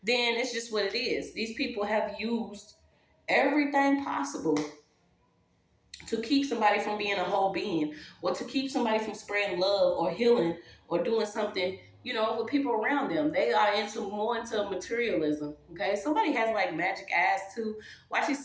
then it's just what it is. These people have used everything possible to keep somebody from being a whole being, or to keep somebody from spreading love or healing or doing something, with people around them. They are more into materialism. Okay, somebody has like magic eyes too. Watching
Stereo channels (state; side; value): identical; both; correlation 1.00